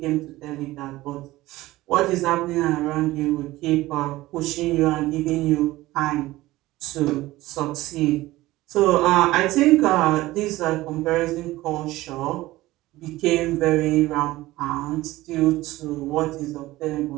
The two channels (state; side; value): quieter; left; 17.7 dB